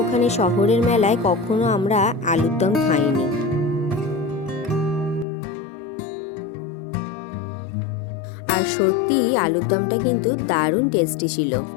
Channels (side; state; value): right; drops out; at 5.2 s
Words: ওখানে শহরের মেলায় কখনো আমরা আলুর দম খাইনি। আর সত্যি আলুর দমটা কিন্তু দারুণ টেস্টি ছিল।